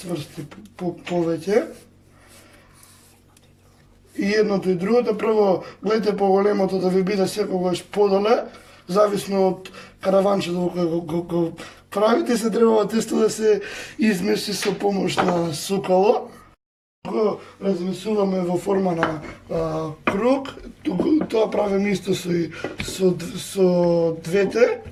повеќе. И едното и другото, прво гледате поголемото да ви биде секогаш подоле, зависно од караванчето кој го правите, се треба тесто да се измеси со помош на сукало. Го размесуваме во форма на круг, тоа правиме исто со двете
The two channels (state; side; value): identical; both; correlation 1.00